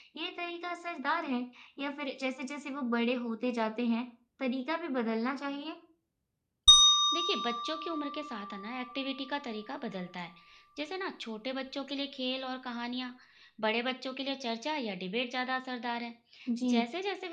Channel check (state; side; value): identical; both; correlation 1.00